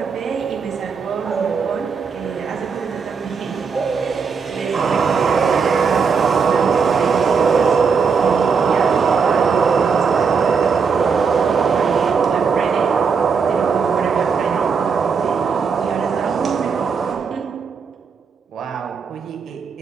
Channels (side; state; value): left; quieter; 5.7 dB